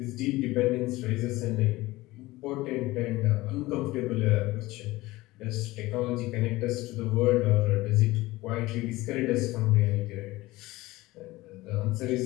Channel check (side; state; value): right; quieter; 19.2 dB